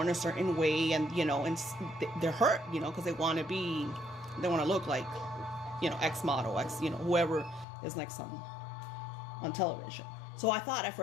a certain way, and, you know, and they're hurt, you know, because they want to look like, you know, X model, you know, whoever is next on television. So I thought at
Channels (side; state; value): right; drops out; at 7.7 s